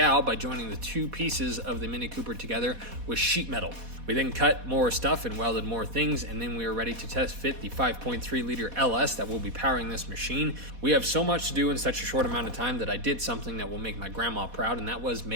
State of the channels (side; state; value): left; late; 4.1 ms